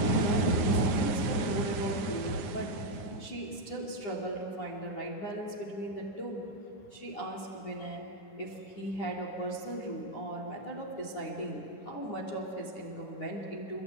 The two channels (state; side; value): late; right; 9.6 ms